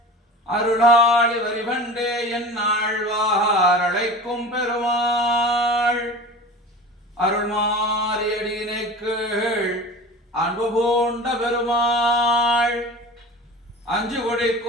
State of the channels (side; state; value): both; normal; correlation 0.36